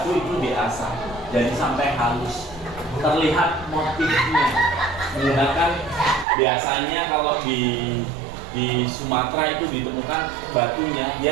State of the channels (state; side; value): drops out; left; at 6.2 s